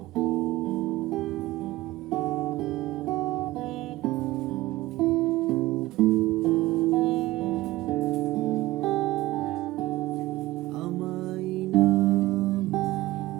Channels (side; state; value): left; quieter; 17.9 dB